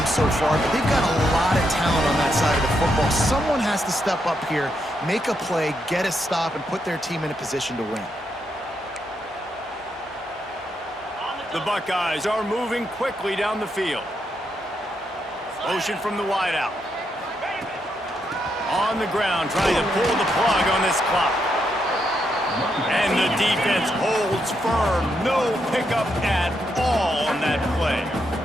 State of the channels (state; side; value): normal; both; correlation 0.80